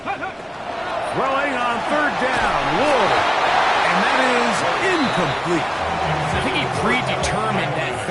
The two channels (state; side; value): identical; both; correlation 1.00